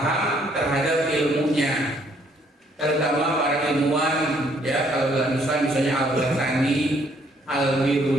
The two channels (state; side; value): normal; both; correlation 0.66